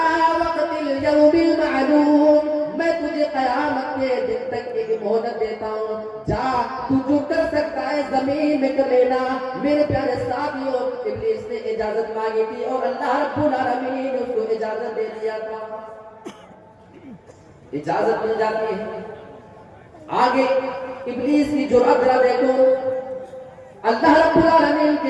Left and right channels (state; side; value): identical; both; correlation 1.00